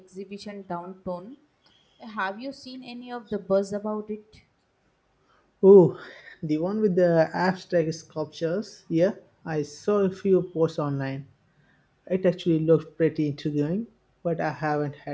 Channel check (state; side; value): identical; both; correlation 1.00